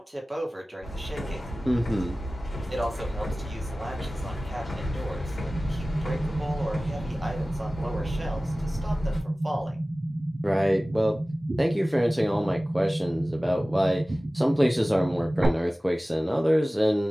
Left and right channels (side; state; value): both; normal; correlation 0.97